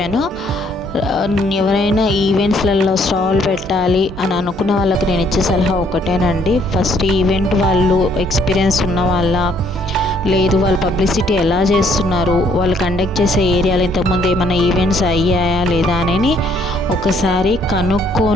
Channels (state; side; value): normal; both; correlation 0.65